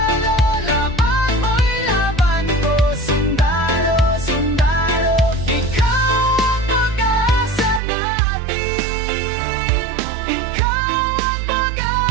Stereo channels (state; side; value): drops out; left; at 7.8 s